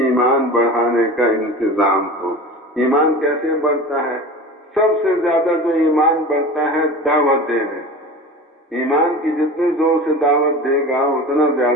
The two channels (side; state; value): both; normal; correlation 0.34